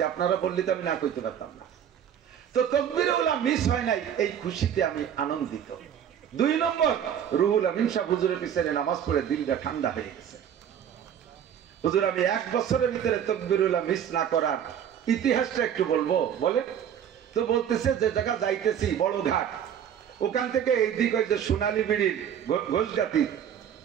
আপনারা বললে তো আমি না কইতে পারতাম না। তো তাকবীরে উলা মিস হয় নাই, এই খুশিতে আমি আনন্দিত। 2 নম্বর, রুহুল আমিন সাহেব হুজুরের পিছনে নামাজ পড়ে দিলটা ঠান্ডা হয়ে গেছে। হুজুর আমি 1 বছরের ভিতরে তাকবীরে উলা মিস না করার ইতিহাসটা একটু বলবো, বলে? তো বলতেছে যে জায়গা যাইতেছি বড় ঘাট, ওখান থেকে এই দিক ওই যে সোনালী বিড়ির ঘোষগাতি,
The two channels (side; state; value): left; quieter; 9.1 dB